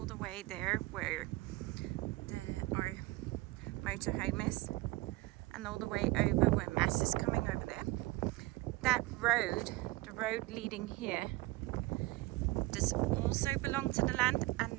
the way there where our motorhome is, and all the way over where Mass is coming over there, that road, the road leading here, does also belong to the land,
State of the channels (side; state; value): left; quieter; 20.4 dB